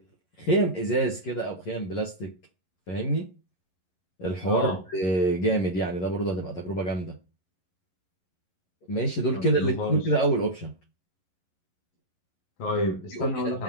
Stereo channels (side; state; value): right; late; 11 ms